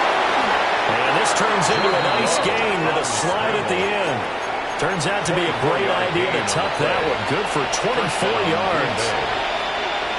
And this turns into a nice gain with a slide at the end. Turns out to be a great idea to tuck that one. Good for 24 yards.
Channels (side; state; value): both; identical; correlation 1.00